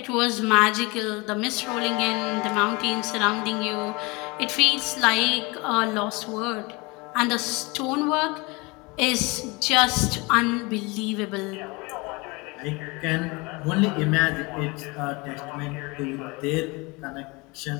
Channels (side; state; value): right; quieter; 26.2 dB